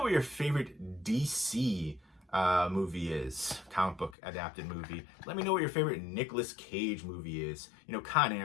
what your favorite DC movie is, comic book adapted movie. Let me know what your favorite Nicolas Cage movie is. Con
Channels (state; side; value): drops out; right; at 4.2 s